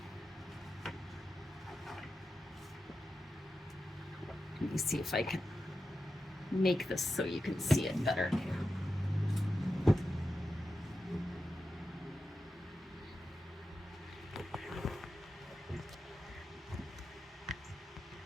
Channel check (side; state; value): both; normal; correlation 0.90